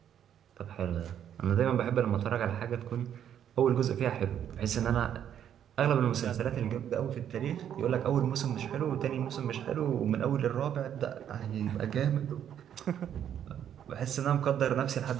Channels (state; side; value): quieter; left; 9.6 dB